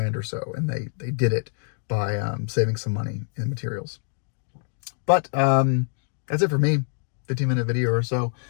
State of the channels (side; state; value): right; silent; digital silence